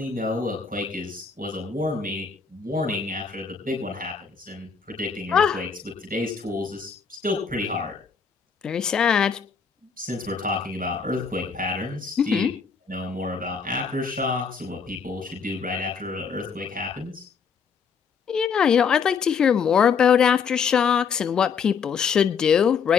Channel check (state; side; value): quieter; right; 6.1 dB